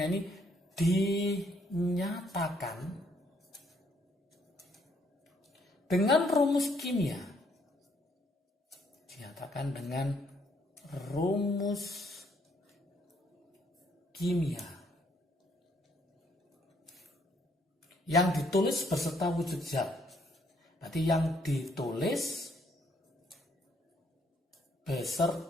ini dinyatakan dengan rumus kimia. Dinyatakan dengan rumus kimia yang ditulis beserta wujud zat. Berarti yang ditulis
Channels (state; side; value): normal; both; correlation 0.69